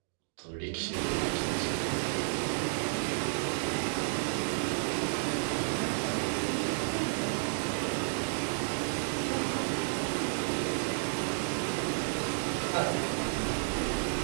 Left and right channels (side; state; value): left; silent; digital silence